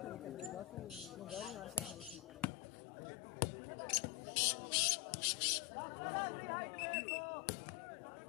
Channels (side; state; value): right; drops out; at 2.5 s